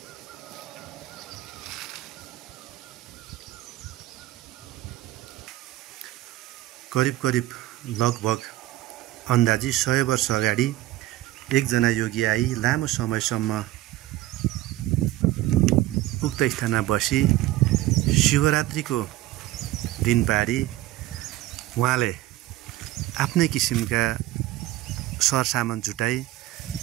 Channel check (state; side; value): quieter; left; 15.9 dB